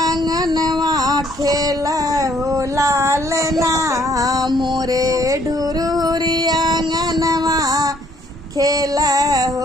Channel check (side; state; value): both; normal; correlation 0.65